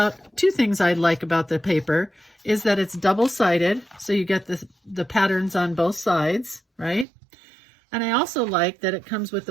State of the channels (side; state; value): left; drops out; at 7.1 s